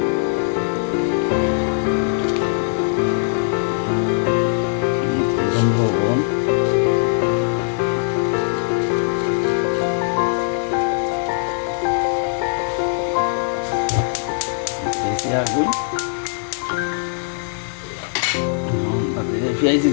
লবণ আগুন পেঁয়াজ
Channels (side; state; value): right; silent; digital silence